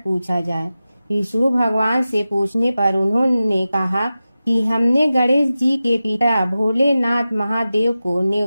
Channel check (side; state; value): both; inverted; correlation -0.94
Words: जाए। विष्णु भगवान से पूछने पर उन्होंने कहा कि हमने गणेश जी के पिता भोलेनाथ महादेव को